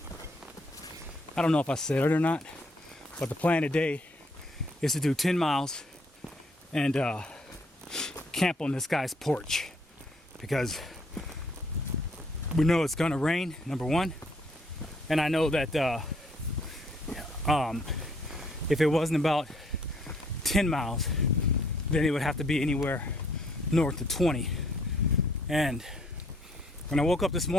I don't know if I said it or not, but the plan today is to do 10 miles and camp on this guy's porch because we know it's gonna rain, number one, and I know that if it wasn't about 10 miles, then it would have to be anywhere north of 20. And when I woke up this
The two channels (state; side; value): normal; both; correlation 0.66